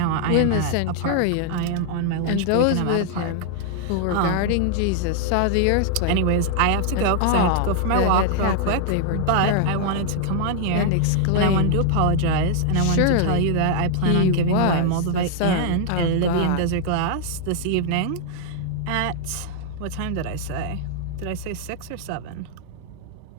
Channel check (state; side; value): different; both; correlation -0.01